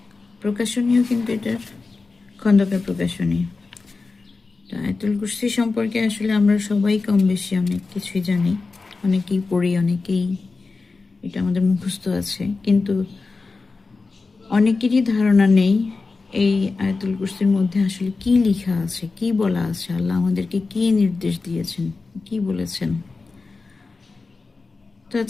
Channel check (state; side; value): quieter; right; 4.0 dB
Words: প্রকাশনীও কিন্তু এটার খন্দকার প্রকাশনী। আয়াতুল কুরসি সম্পর্কে আসলে আমরা সবাই কম বেশি অনেক কিছুই জানি, অনেকেই পড়ি, অনেকেই এটা আমাদের মুখস্থ আছে, কিন্তু অনেকেরই ধারণা নেই এই আয়াতুল কুরসির মধ্যে আসলে কি লেখা আছে, কি বলা আছে, আল্লাহ আমাদেরকে কি নির্দেশ দিয়েছেন, কি বলেছেন। তো